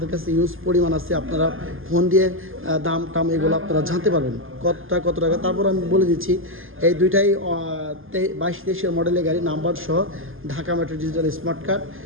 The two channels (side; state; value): left; late; 0.59 ms